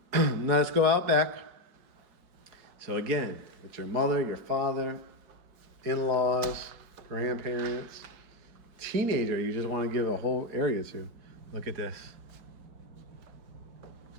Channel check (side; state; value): left; late; 5.0 ms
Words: now let's go out back. So again, with your mother, your father, in-laws, grandparents, teenager you just want to give a whole area to. Look at this.